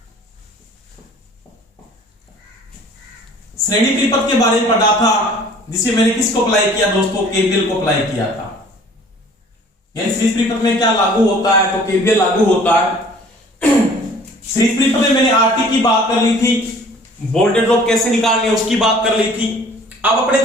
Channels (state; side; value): normal; both; correlation 0.51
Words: श्रेणी परिपथ के बारे में पढ़ा था, जिसे मैंने किसको अप्लाई किया दोस्तों? केवीएल को अप्लाई किया था। यानी सीरीज परिपथ में क्या लागू होता है? तो केवीएल लागू होता है। सीरीज परिपथ में मैंने आरटी की बात कर ली थी, वोल्टेज ड्रॉप कैसे निकालनी है उसकी बात कर ली थी। अब अपने